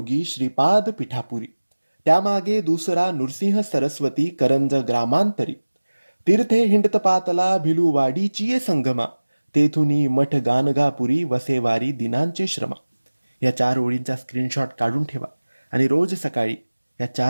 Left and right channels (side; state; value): both; inverted; correlation -1.00